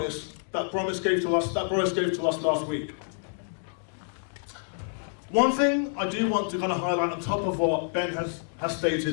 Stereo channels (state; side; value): silent; right; digital silence